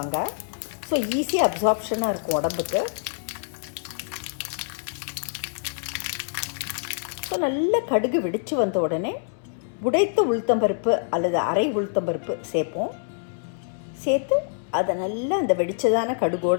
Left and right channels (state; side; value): silent; right; 61 dB below the other